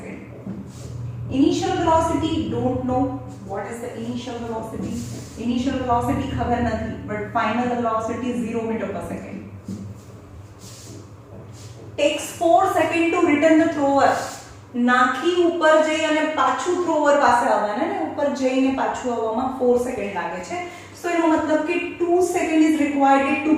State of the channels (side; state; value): both; identical; correlation 1.00